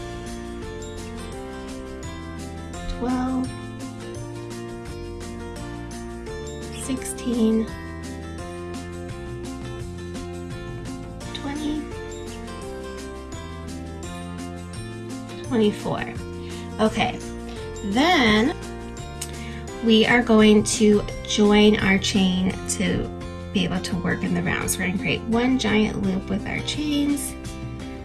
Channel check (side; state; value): both; identical; correlation 1.00